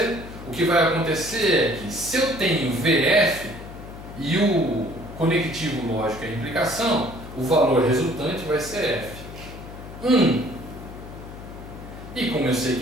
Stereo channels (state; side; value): noise; left; hum, 13 dB below the sound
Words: O que vai acontecer é que se eu tenho VF e o conectivo lógico é a implicação, o valor resultante vai ser F. 1. E como eu sei